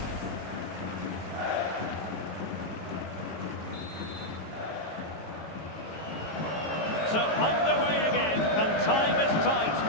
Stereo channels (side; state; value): right; late; 18 ms